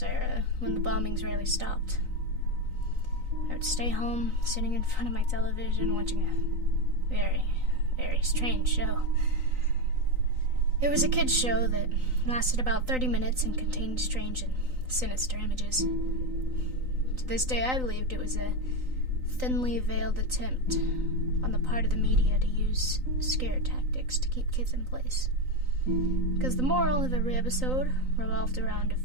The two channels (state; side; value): late; left; 3.9 ms